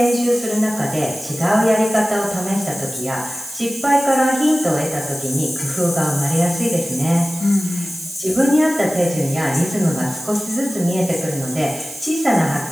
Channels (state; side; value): noise; right; hiss, 15 dB below the sound